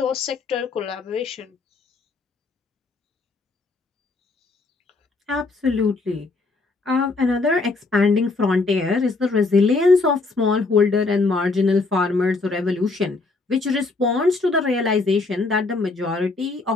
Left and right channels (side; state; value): right; quieter; 3.7 dB